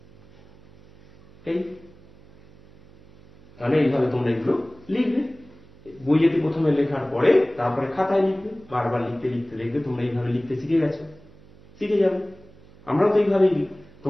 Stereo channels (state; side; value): noise; right; hum, 24 dB below the sound